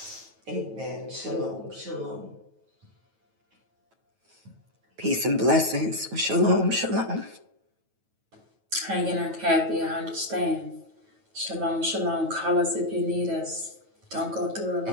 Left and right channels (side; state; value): left; late; 9.2 ms